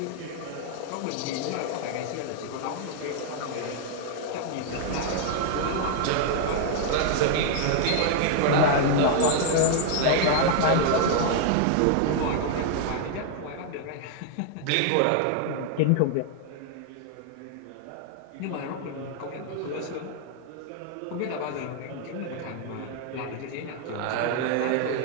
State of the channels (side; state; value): both; different; correlation -0.01